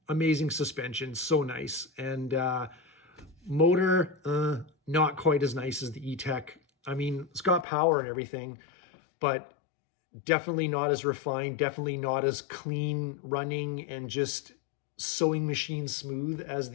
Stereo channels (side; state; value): right; drops out; at 7.7 s